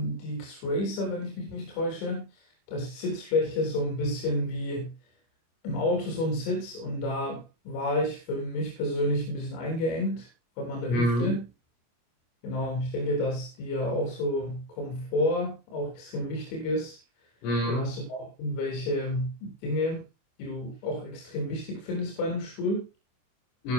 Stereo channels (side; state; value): right; late; 25 ms